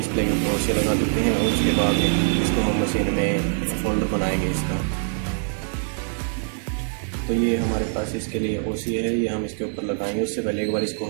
के ऊपर से लगा देते हैं और उसके बाद इसको हम मशीन में फोल्डर बनाएंगे इसका। तो ये हमारे पास इसके लिए ओसी है, ये हम इसके ऊपर लगाएंगे। उससे पहले एक बार इसको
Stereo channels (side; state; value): left; silent; 60 dB below the other